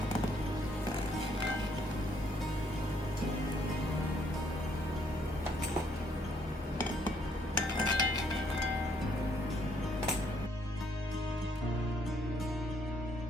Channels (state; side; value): normal; both; correlation 0.68